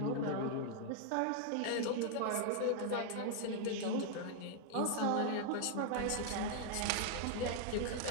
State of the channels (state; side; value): different; both; correlation 0.00